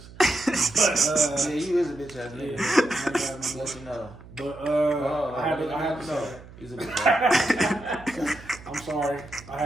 Yeah, you is a bitch ass nigga. Yeah, Let you know. But I had to say that. He's a bitch ass. I'm sorry. I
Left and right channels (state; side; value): noise; right; hum, 19 dB below the sound